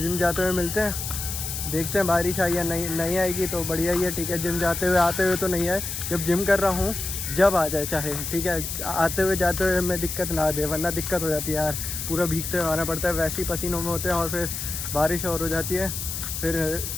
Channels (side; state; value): left; noise; hiss, 5 dB below the sound